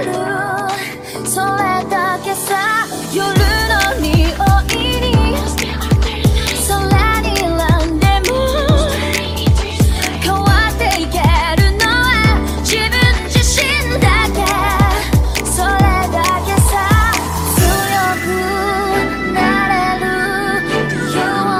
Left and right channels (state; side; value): identical; both; correlation 1.00